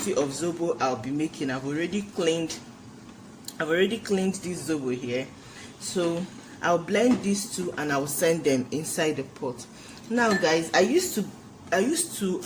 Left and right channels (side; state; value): both; identical; correlation 1.00